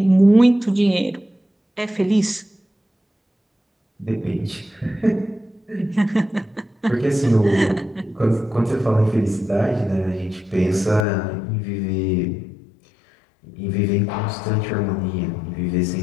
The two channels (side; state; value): right; drops out; at 11.1 s